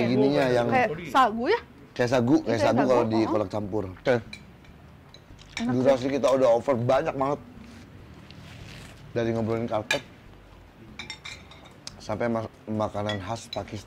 gininya yang Kayak sagu ya? kayak sagu Kayak sagu sagu, kalau di oh. kolak campur. Oke. Durasi kita udah over banyak banget. Dari ngobrolin karpet sampai makanan khas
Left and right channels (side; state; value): both; identical; correlation 1.00